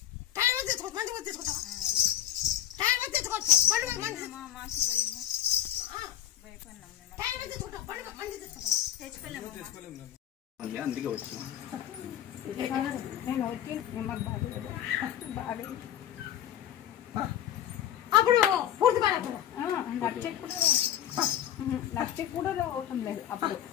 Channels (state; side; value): quieter; right; 11.4 dB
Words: టైర్ వద్ద తెచ్చుకో, మంచి వద్ద తెచ్చుకుంటావా? టైర్ వద్ద తెచ్చుకోవచ్చు, బండి మంచి టైర్ వద్ద తెచ్చుకుంటావు, బండి మంచి తెచ్చుకుంటావా? అందుకే వచ్చిన నేను వచ్చి అప్పుడు పూర్తి బాగా లక్ష కూడా అవటం లేదు.